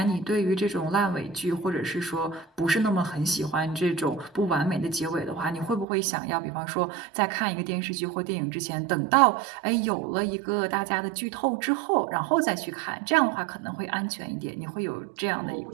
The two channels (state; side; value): drops out; left; at 5.9 s